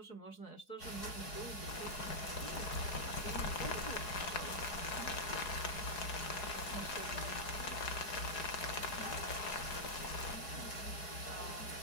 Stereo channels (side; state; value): right; late; 4.8 ms